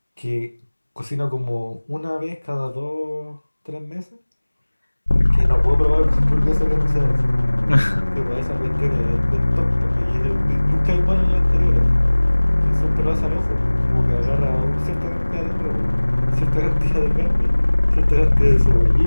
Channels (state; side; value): inverted; both; correlation -1.00